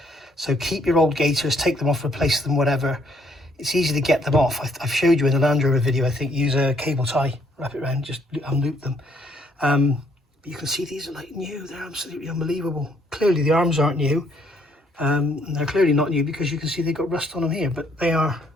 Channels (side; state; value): both; normal; correlation 0.68